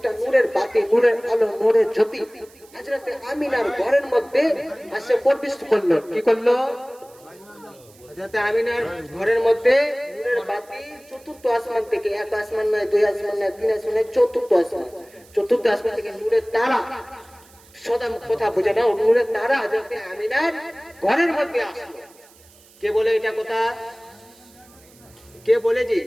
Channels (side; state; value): right; noise; hiss, 27 dB below the sound